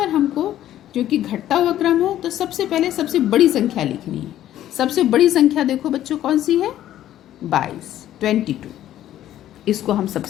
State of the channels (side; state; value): right; quieter; 12.5 dB